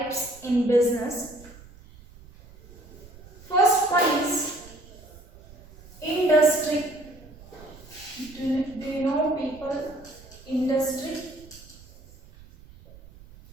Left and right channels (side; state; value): right; noise; rumble, 21 dB below the sound